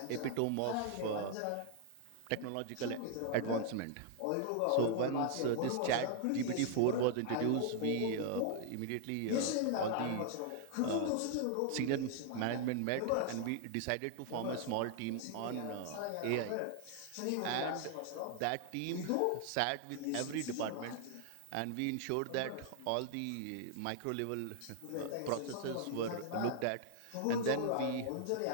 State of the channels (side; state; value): both; different; correlation 0.00